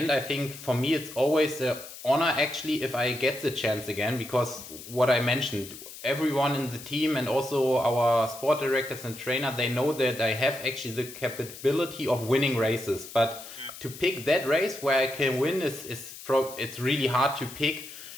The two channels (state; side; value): noise; left; hiss, 14 dB below the sound